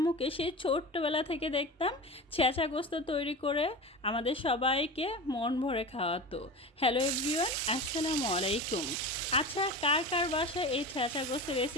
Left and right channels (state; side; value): normal; both; correlation 0.29